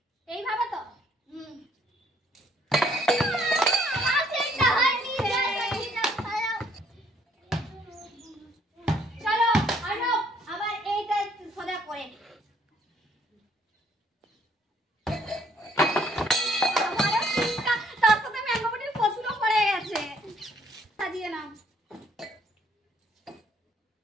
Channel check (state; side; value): normal; both; correlation 0.64